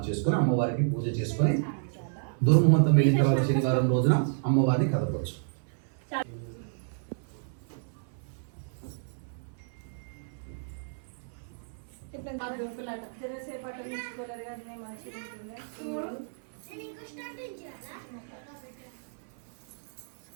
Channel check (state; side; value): silent; left; 56 dB below the other